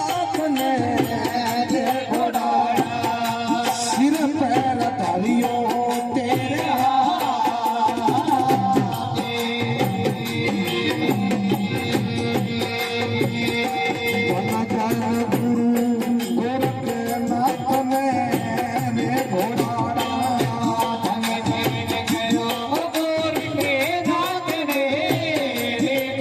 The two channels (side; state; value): both; identical; correlation 1.00